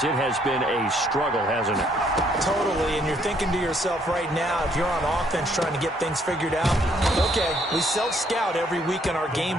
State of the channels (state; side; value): normal; both; correlation 0.67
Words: it has been a struggle, hasn't it? Totally, and you're thinking to yourself right now, if you're on offense trying to get things figured out, okay, we self-scout every week in our game